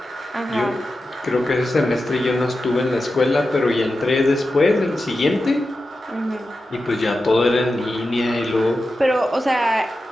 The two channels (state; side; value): normal; both; correlation 0.91